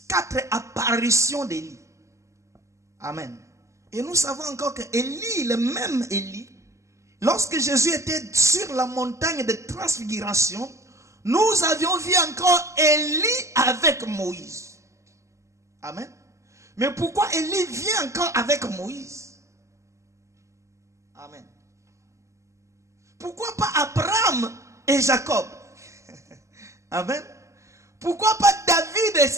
4 apparitions d'Élie. Amen. Et nous savons encore que Élie, le même Élie, lorsque Jésus était sur la montagne de transfiguration, nous avions vu encore Élie avec Moïse. Amen. Mais pourquoi Élie vient encore avec Moïse? Amen. Pourquoi pas Abraham et Jacob? Amen. Pourquoi pas David et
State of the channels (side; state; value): left; late; 0.14 ms